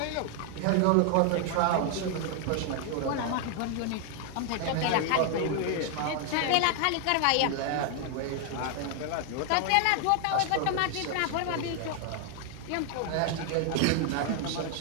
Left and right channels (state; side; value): different; both; correlation 0.00